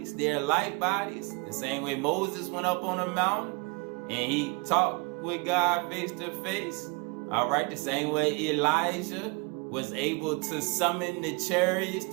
their light bodies, the same way Moses went up on a mountain and he talked with God face to face. All right, the same way Elijah was able to summon the chariots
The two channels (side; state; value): left; quieter; 29.8 dB